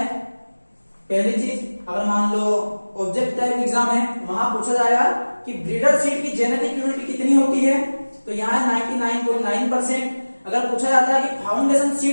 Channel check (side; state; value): both; inverted; correlation -1.00